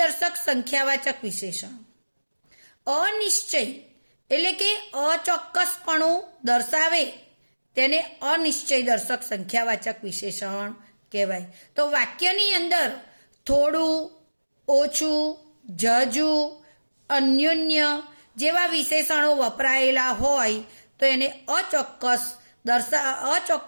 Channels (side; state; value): both; inverted; correlation -1.00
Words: સંખ્યાવાચક વિશેષણ. અનિશ્ચય એટલે કે અચોક્કસપણું દર્શાવે તેને અનિશ્ચય દર્શક સંખ્યાવાચક વિશેષણ કહેવાય. તો વાક્યની અંદર થોડું, ઓછું, ઝાઝું, અન્યોન્ય જેવા વિશેષણો વપરાયેલા હોય તો એને